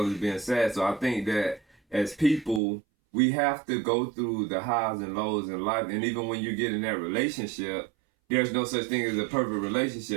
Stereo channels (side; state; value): left; drops out; at 2.6 s